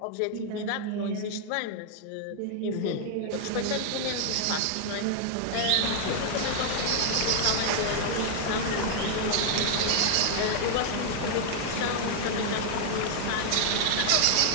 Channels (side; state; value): both; different; correlation 0.00